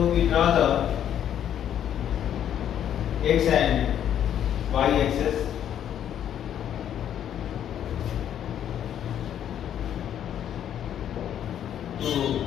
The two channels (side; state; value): right; quieter; 10.0 dB